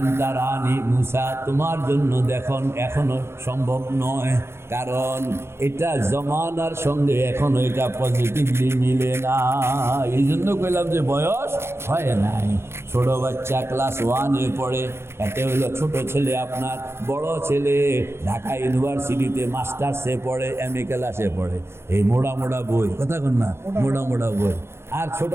তারানি, মূসা তোমার জন্য দেখুন এখনো সম্ভব নয়। কারণ এটা জমানার সঙ্গে এখনো এটা পজিটিভলি মিলে না। এই জন্য কইলাম যে বয়স হয় নাই। ছোট বাচ্চা ক্লাস 1-এ পড়ে, এতে হলো ছোট ছেলে আপনার, বড় ছেলে ঢাকা ইউনিভার্সিটিতে মাস্টার্সে পড়ে, MA ক্লাসে পড়ে। এই মোড়া মোড়া বই, কথা কন না, মোড়া মোড়া বই। আর ছোট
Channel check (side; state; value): left; late; 0.12 ms